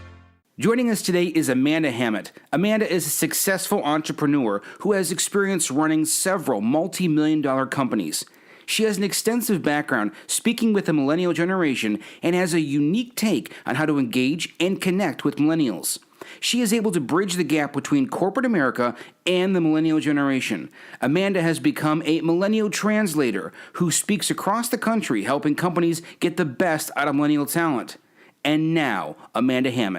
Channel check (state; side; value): identical; both; correlation 1.00